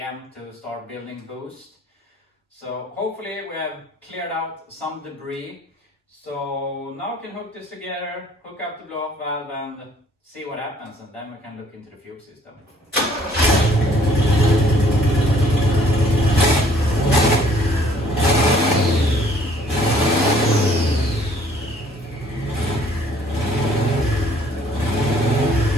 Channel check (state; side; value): normal; both; correlation 0.59